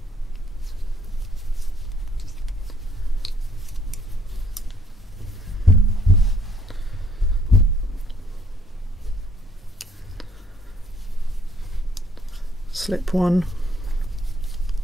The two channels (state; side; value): normal; both; correlation 0.65